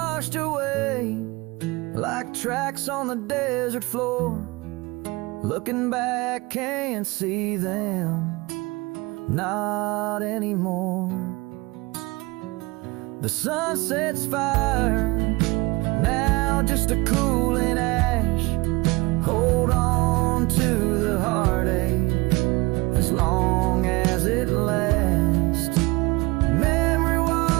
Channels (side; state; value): left; quieter; 23.4 dB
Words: away like tracks on the desert floor. Looking back, can't see them, not anymore. The sunset's fire, now just a cooling ash. Hold on to the heartache as long as it lasts. Memory